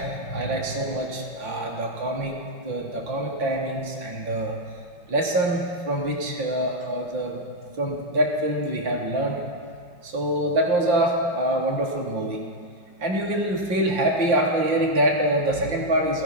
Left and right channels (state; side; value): late; left; 5.7 ms